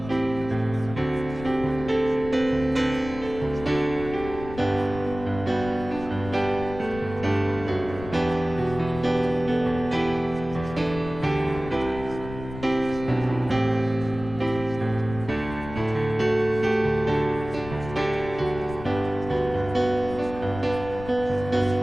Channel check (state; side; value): noise; left; rumble, 13 dB below the sound